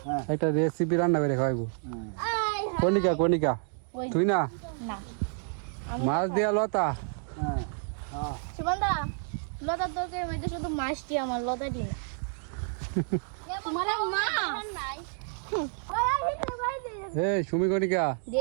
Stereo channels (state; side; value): silent; left; 58 dB below the other